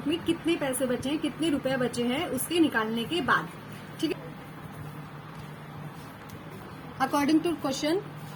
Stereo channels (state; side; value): identical; both; correlation 1.00